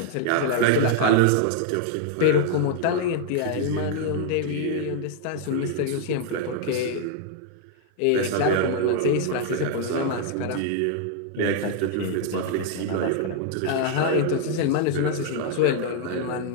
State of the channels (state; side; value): different; both; correlation 0.00